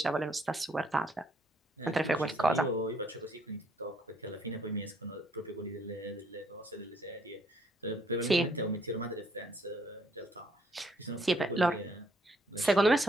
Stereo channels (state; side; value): normal; both; correlation 0.67